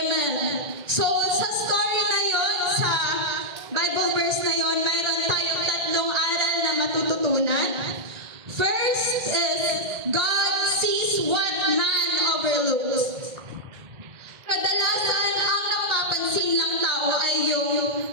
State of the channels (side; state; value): left; late; 1.9 ms